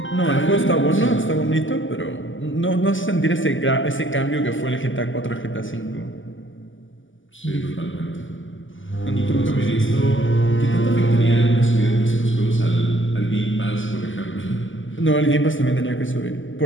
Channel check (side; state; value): right; late; 0.57 ms